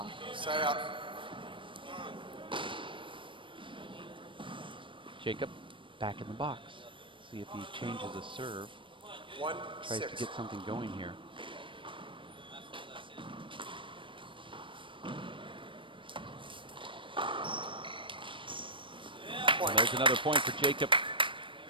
Side out. Jacob back in the box. See if he changes a serve. Tries to get something going here. And there's another point for Jacob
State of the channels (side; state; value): left; late; 0.25 ms